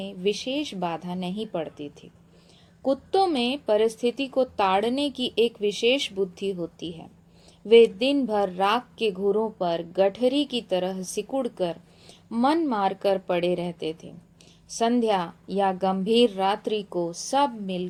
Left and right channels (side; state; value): both; identical; correlation 1.00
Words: विशेष बाधा नहीं पड़ती थी। कुत्तों में परिस्थिति को ताड़ने की एक विशेष बुद्धि होती है। वे दिन भर राख के घूरों पर गठरी की तरह सिकुड़कर मन मारकर पड़े रहते थे। संध्या या गंभीर रात्रि को सब